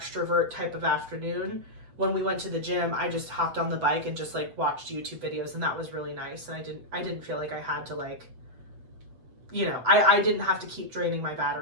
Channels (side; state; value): left; late; 8.0 ms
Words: type of afternoon, when we went to the gym, I just hopped on the bike and just like watched YouTube videos, and that was really nice. And I didn't feel like I had to like, you know, I didn't have to keep draining my